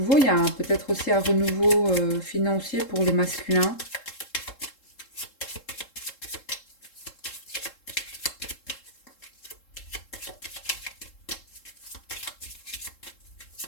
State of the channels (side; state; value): right; late; 3.7 ms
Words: il y a peut-être aussi un renouveau financier pour les masculins.